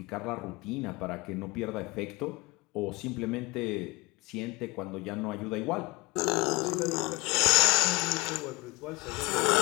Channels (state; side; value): quieter; right; 24.8 dB